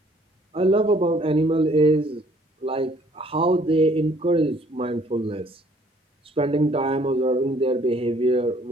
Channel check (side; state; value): both; normal; correlation 0.60